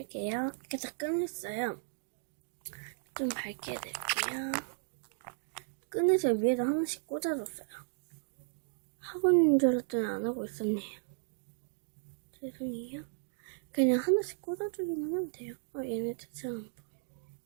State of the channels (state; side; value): silent; left; digital silence